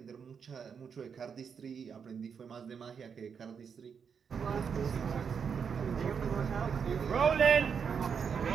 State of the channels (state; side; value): quieter; left; 6.6 dB